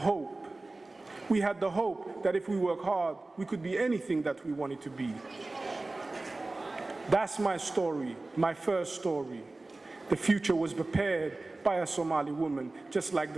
We had the hope that if we work hard, we could be anything that we wanted to be. That's my story, my first story. The future was prepared by a Somali woman, just like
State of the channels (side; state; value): left; quieter; 3.1 dB